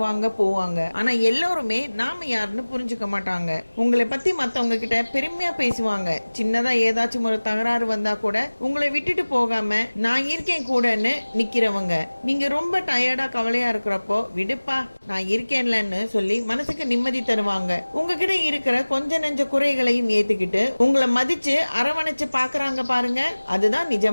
போவாங்க. ஆனா எல்லாருமே நாம யாருன்னு புரிஞ்சுக்க மாட்டாங்க. உங்களை பத்தி மத்தவங்க கிட்ட பெருமையா பேசுவாங்க. சின்னதா ஏதாச்சும் ஒரு தகராறு வந்தா கூட உங்களை விட்டுட்டு போகாம நான் இருக்கேன் கூடன்னு நிக்கிறவங்க. நீங்க ரொம்ப டயர்டா கவலையா இருக்கிறப்போ விடுப்பா நான் இருக்கேன்லன்னு சொல்லி மனசுக்கு நிம்மதி தருவாங்க. உங்ககிட்ட இருக்கிற கொஞ்ச நெஞ்ச குறைகளையும் ஏத்துக்கிட்டு உங்களை மதிச்சு அரவணைச்சு பாக்குறாங்க பாருங்க. அதுதான்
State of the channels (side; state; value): both; inverted; correlation -1.00